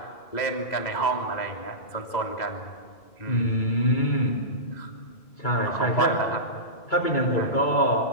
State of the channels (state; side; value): late; right; 2.0 ms